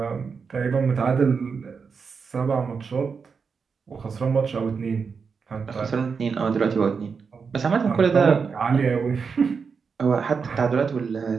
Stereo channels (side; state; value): left; quieter; 5.6 dB